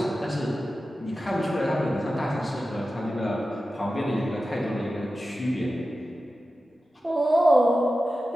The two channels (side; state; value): both; normal; correlation 0.93